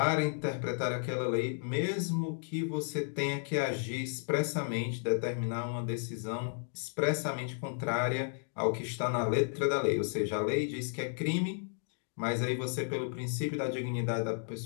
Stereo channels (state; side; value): silent; right; digital silence